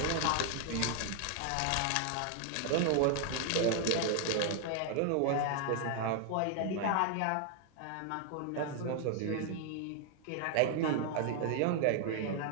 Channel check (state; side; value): different; both; correlation 0.00